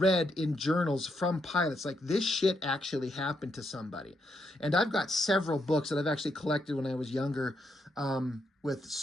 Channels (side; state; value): both; normal; correlation 0.79